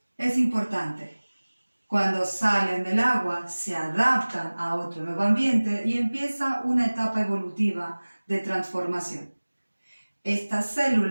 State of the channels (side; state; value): both; inverted; correlation -1.00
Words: Es importante. Cuando salen del agua, se adaptan a otro nuevo ambiente y empieza una etapa evolutiva de transformación. Estas